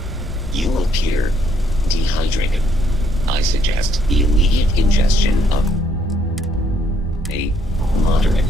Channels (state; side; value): normal; both; correlation 0.70